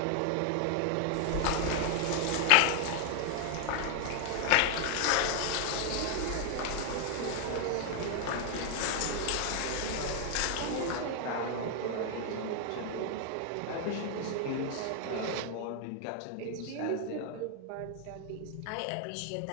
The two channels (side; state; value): both; different; correlation 0.00